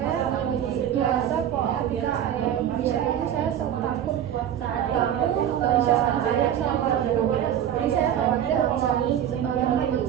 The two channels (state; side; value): quieter; left; 10.2 dB